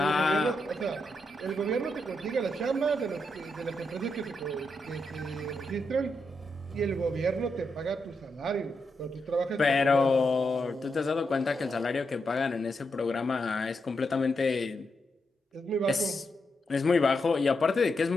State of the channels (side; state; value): both; normal; correlation 0.83